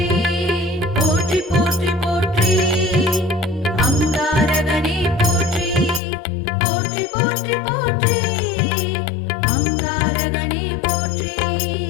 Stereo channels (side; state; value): right; drops out; at 6.0 s